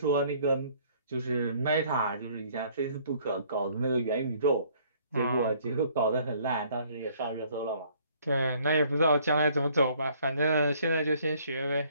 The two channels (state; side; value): inverted; both; correlation -0.61